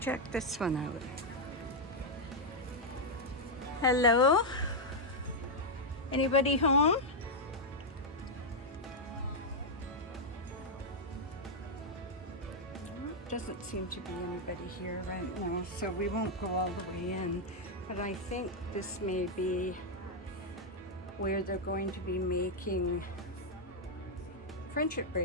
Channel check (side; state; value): both; normal; correlation -0.02